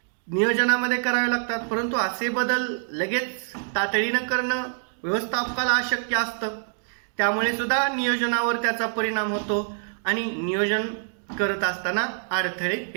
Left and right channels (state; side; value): silent; left; digital silence